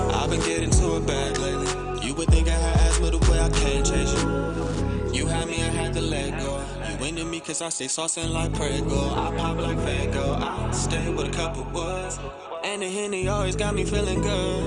I've been getting to a bag lately. You would think I had asthma the way I can't chase you. You had me, I had to let go. You into me cause I stay saucing like Prego. I pop like Fago. I stay with a couple words. And the Henny always got me feeling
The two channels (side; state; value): both; identical; correlation 1.00